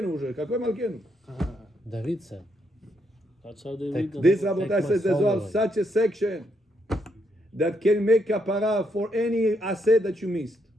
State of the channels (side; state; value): both; normal; correlation 0.76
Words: уже. Какой Malkeinu? David said. That's how they read the This Take Rabotai my says there's soul well away. such a section that can make kapara for any aseh that you missed.